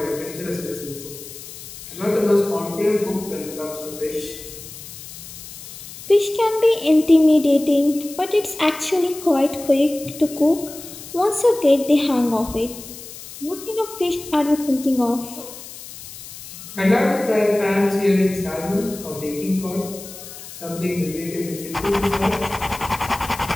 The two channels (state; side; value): noise; left; hiss, 14 dB below the sound